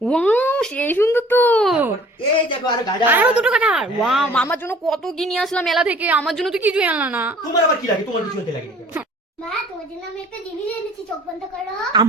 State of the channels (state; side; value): normal; both; correlation 0.52